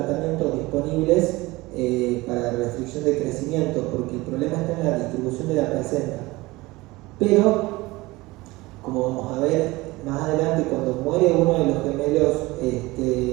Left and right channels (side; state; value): left; quieter; 21.1 dB